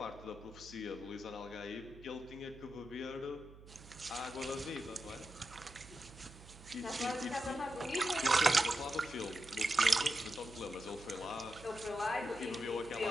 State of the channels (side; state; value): right; noise; hum, 18 dB below the sound